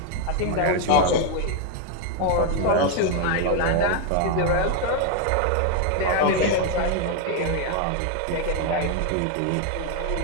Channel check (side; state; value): both; different; correlation 0.01